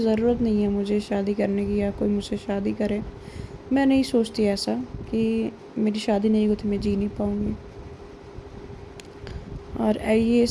नहीं है मुझे शादी करने की, या कोई मुझसे शादी करे। मैं नहीं सोचती ऐसा कि मेरी शादी नहीं होती मैं जी नहीं पाऊँगी। और ये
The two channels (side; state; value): both; identical; correlation 1.00